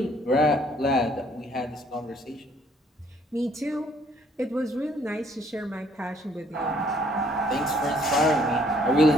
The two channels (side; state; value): both; normal; correlation 0.63